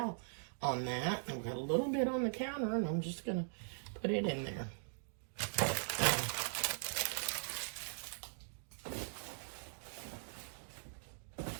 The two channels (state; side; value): silent; left; digital silence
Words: on that. I've got a little bit on the counter, and I'm just going to put it in there.